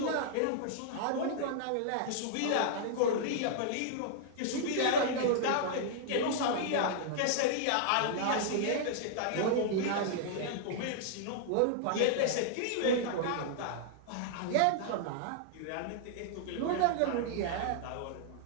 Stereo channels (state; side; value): different; both; correlation -0.01